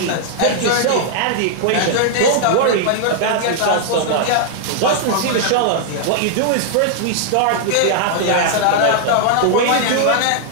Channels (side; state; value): both; different; correlation -0.01